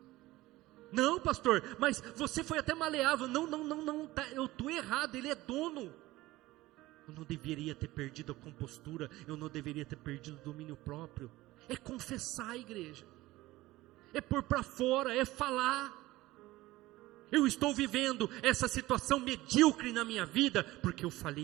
Não, pastor, mas você foi até maleável. Não, tá, eu estou errado, ele é dono. Eu não deveria ter perdido a compostura, eu não deveria ter perdido o domínio próprio. É confessar, igreja. É pôr para fora, é falar. Eu estou vivendo essa situação medíocre na minha vida, porque eu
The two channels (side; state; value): left; quieter; 18.0 dB